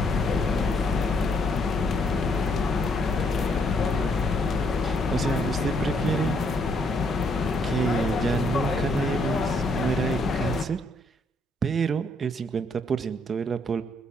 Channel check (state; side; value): normal; both; correlation 0.71